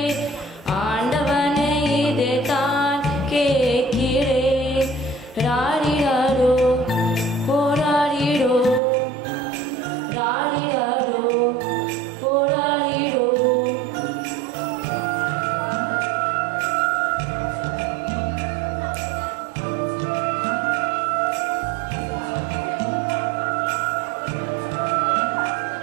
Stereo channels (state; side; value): drops out; left; at 8.8 s